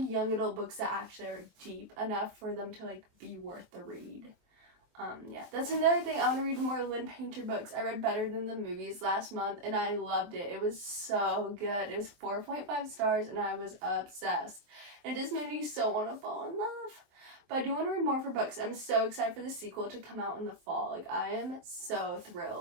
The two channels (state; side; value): late; left; 24 ms